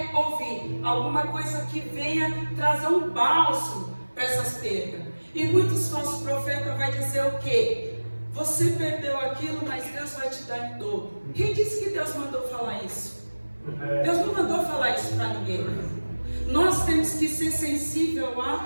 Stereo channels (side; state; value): both; inverted; correlation -1.00